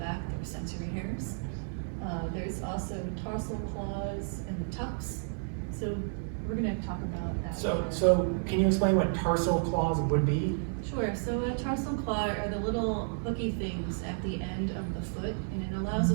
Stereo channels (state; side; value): silent; left; digital silence